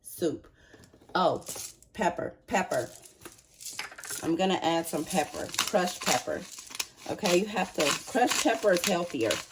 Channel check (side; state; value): both; identical; correlation 1.00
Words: soup. Oh, pepper. I'm gonna add some pepper, crushed pepper. Okay, you have to, crushed pepper is healthier.